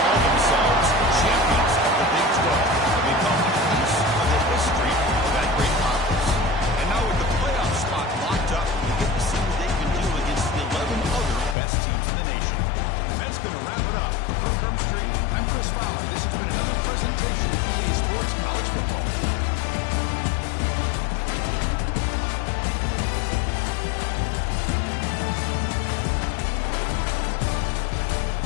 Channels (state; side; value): drops out; right; at 11.6 s